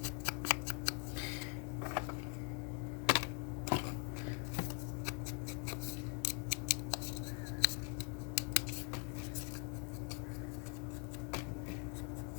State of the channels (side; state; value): right; quieter; 36.3 dB